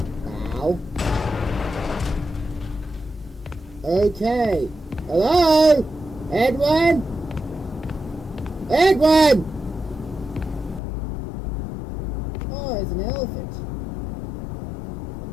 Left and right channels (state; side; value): drops out; right; at 10.8 s